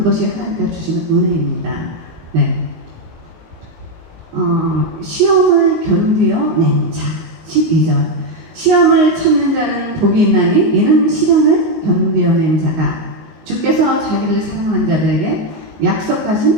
하나님께서 주시는 은혜입니다. 네. 시험을 견디어 낸 자. 12절. 시험을 참는 자는 복이 있나니 이는 시련을 견디어낸 자가 주께서 자기를 사랑한 자들에게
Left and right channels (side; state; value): left; late; 19 ms